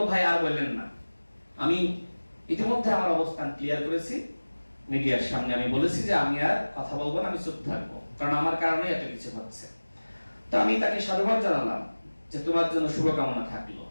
ভাই আর বললেন না, আমি ইতিমধ্যে আমার অবস্থান ক্লিয়ার করেছি, মিডিয়ার সামনে আমি বলেছি যে আমি আর কথা বলবো না, আমি চুপ থাকবো, কারণ আমার কারণে এত কিছু হচ্ছে। তো আমি তাকে সাধুবাদ জানালাম যে তোমার জন্য শুভকামনা থাকলো।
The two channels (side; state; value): both; inverted; correlation -1.00